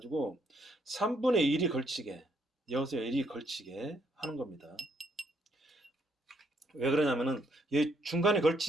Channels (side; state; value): both; normal; correlation 0.71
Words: 3분의 1이 걸치게, 여기서 1이 걸치게 하는 겁니다. 왜 그러냐면은 이 중간에